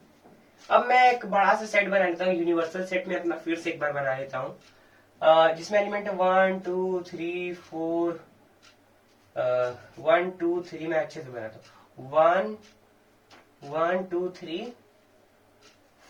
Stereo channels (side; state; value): both; identical; correlation 1.00